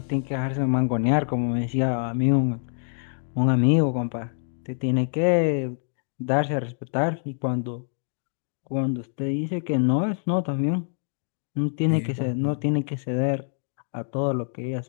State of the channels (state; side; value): silent; right; 61 dB below the other